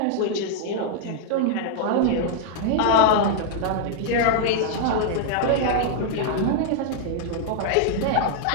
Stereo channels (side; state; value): both; different; correlation 0.00